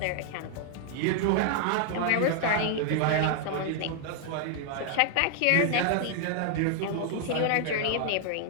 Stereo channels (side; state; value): both; different; correlation 0.00